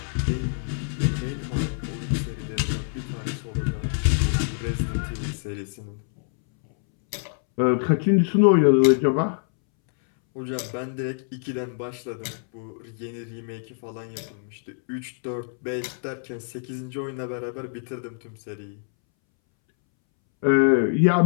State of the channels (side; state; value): right; silent; 62 dB below the other